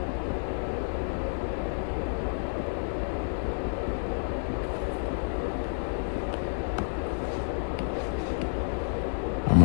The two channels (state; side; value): silent; right; digital silence